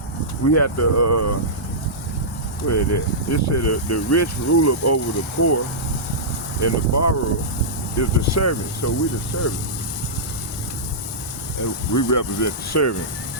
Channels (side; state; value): both; normal; correlation -0.14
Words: where is it? It said the rich ruleth over the poor, and the borrower is the servant. So we the servant, and we represent the servant.